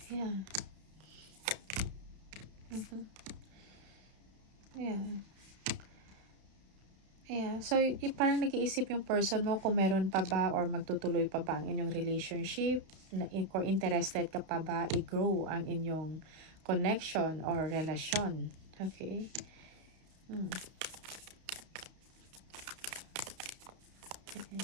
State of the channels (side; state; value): left; late; 32 ms